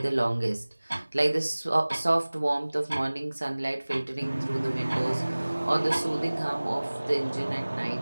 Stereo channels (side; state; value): both; inverted; correlation -1.00